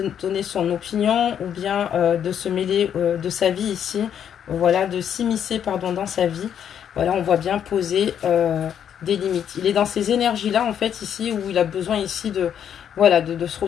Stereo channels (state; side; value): quieter; right; 8.9 dB